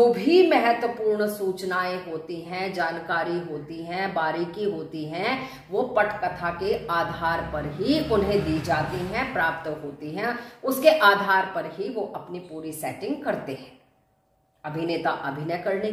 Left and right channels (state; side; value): identical; both; correlation 1.00